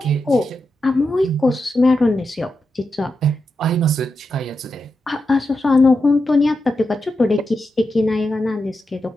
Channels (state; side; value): normal; both; correlation 0.88